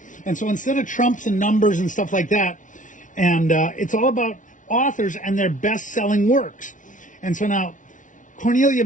And so instead of trumps and numbers and stuff like that, and it's all about authors and their best-selling works. And so now,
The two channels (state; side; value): late; right; 0.37 ms